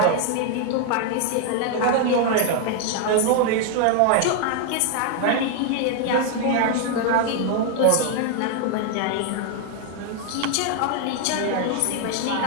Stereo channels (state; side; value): different; both; correlation 0.01